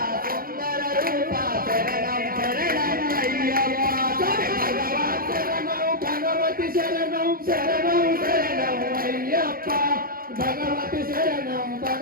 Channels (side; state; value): left; late; 0.42 ms